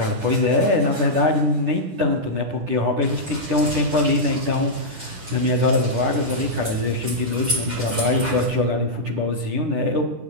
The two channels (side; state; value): left; late; 10 ms